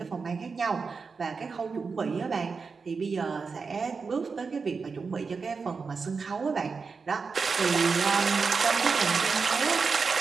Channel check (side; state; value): left; quieter; 4.9 dB